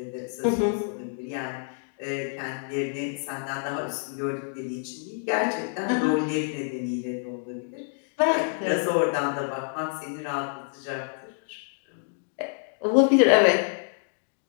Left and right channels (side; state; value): right; silent; 60 dB below the other